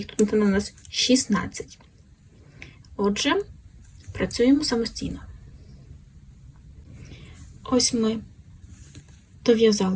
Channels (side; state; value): both; identical; correlation 1.00